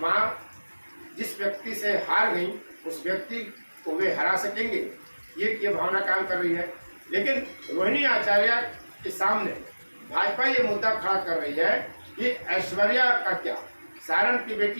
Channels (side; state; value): both; inverted; correlation -1.00